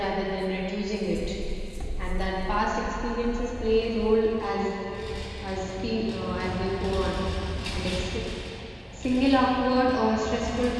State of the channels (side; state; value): both; identical; correlation 1.00